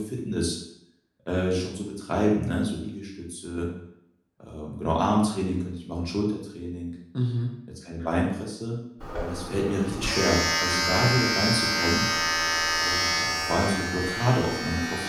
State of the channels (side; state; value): both; identical; correlation 1.00